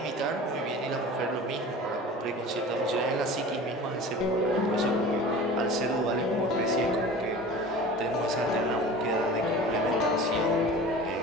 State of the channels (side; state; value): both; normal; correlation 0.38